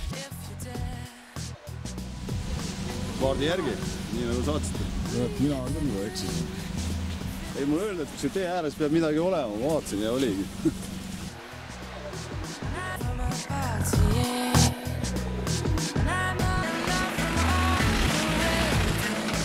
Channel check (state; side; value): identical; both; correlation 1.00